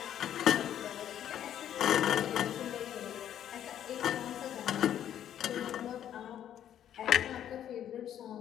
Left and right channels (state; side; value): quieter; right; 10.5 dB